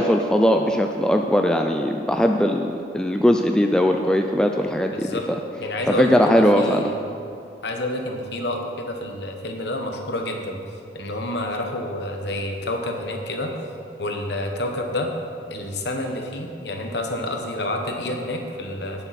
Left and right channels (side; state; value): both; normal; correlation 0.69